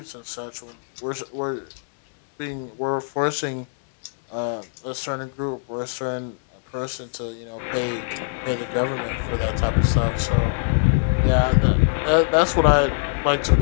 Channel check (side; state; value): right; silent; digital silence